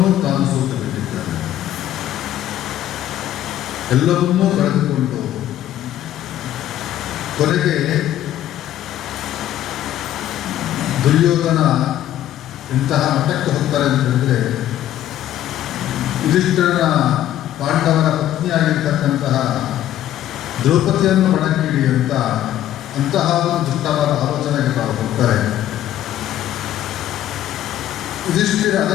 ತಾನು ಸೋತು ಬಿಟ್ಟಿದ್ದಾನೆ. ಎಲ್ಲವನ್ನೂ ಕಳೆದುಕೊಂಡು ಕೊನೆಗೆ ದುರ್ಯೋಧನ ಇಂತಹ ಮಟ್ಟಕ್ಕೆ ಹೋಗ್ತಾರೆ ಅಂತ ಹೇಳಿದ್ರೆ, ಯುಧಿಷ್ಠಿರನ ಪಾಂಡವರ ಪತ್ನಿಯಾಗಿರ್ತಕ್ಕಂತಹ ದ್ರೌಪದಿಯನ್ನು ಒಣಗಿಡಿ ಅಂತಹ ಒಂದು ದುಷ್ಟವಾದ ಆಲೋಚನೆಗೆ ತಾವು ಹೋಗ್ತಾರೆ. ಯುಧಿಷ್ಠಿರ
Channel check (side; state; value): right; quieter; 12.3 dB